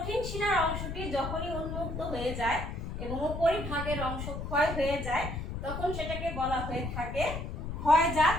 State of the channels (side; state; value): left; noise; rumble, 6 dB below the sound